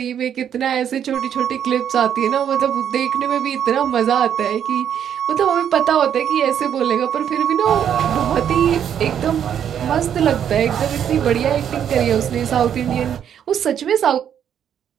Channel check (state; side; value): quieter; left; 9.1 dB